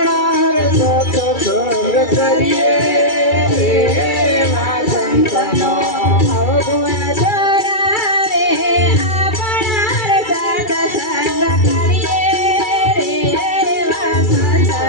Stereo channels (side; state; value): right; late; 2.3 ms